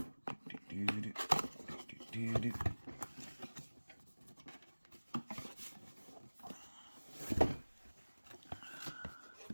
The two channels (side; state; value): both; inverted; correlation -1.00